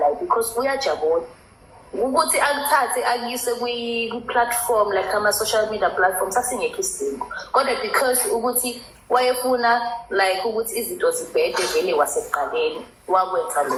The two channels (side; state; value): both; identical; correlation 1.00